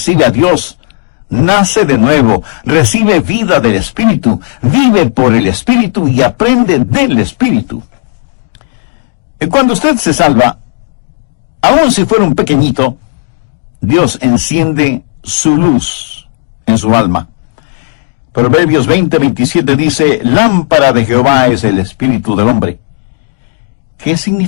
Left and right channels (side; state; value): right; silent; digital silence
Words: a Dios, nace de nuevo, recibe vida del Espíritu, vive por el Espíritu y aprende del Espíritu. Y cuando usted se salva, aun si fuera un pequeñito, Dios enciende su luz en su alma. Proverbios 20:27 dice, lámpara de Jehová es el espíritu del hombre. ¿Qué